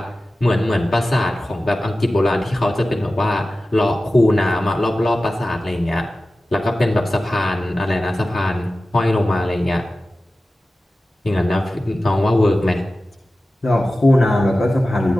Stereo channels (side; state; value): both; normal; correlation 0.95